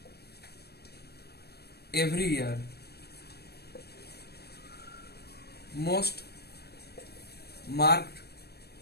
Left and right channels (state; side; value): late; right; 0.47 ms